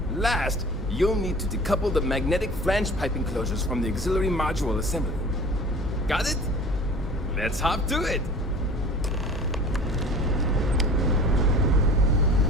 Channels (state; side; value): normal; both; correlation 0.43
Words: Last, you'll need to decouple the magnetic flange pipe enclosures from the auxiliary module assembly. Got it? Let's hop to it!